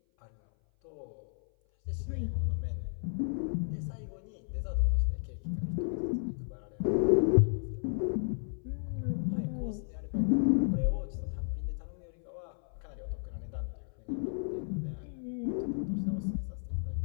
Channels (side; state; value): right; silent; 56 dB below the other